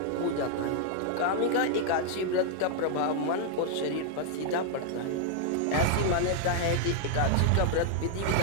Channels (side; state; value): both; different; correlation 0.00